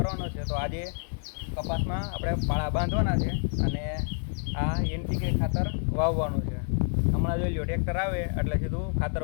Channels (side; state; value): right; silent; 59 dB below the other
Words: છે. તો આજે કપાસમાં આપણે પાળા બાંધવાના છે અને આ NPK ખાતર વાવવાનું છે. હમણાં જોઈ લો, ટ્રેક્ટર આવે એટલે સીધું